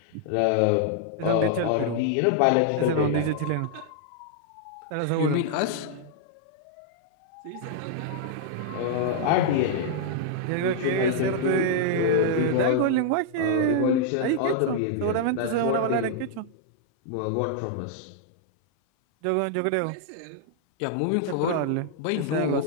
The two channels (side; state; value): both; different; correlation -0.01